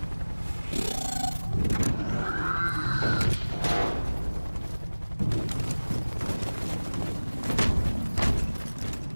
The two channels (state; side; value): inverted; both; correlation -1.00